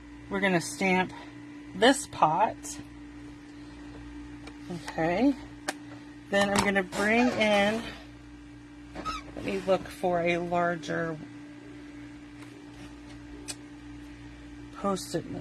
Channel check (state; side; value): identical; both; correlation 1.00